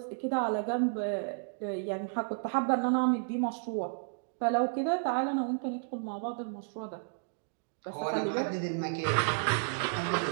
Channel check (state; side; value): silent; left; digital silence